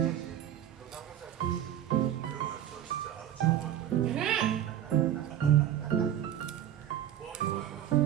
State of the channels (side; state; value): left; quieter; 11.2 dB